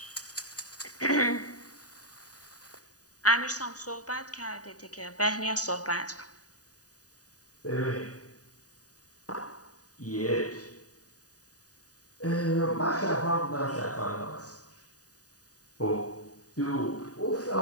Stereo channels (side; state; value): right; late; 0.68 ms